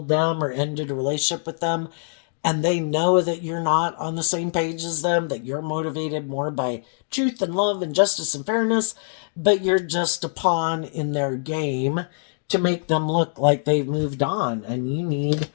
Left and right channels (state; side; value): silent; right; digital silence